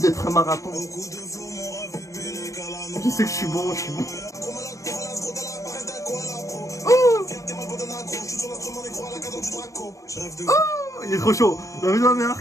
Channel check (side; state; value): right; late; 0.16 ms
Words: un marathon. Je sais que je suis bon, je suis bon. Oh, il est trop chaud. La vie de ma mère.